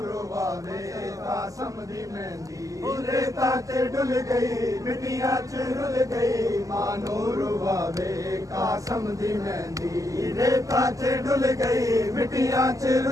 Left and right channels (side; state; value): left; late; 0.16 ms